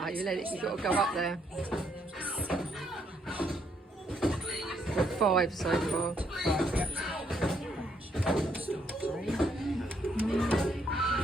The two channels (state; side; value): normal; both; correlation 0.72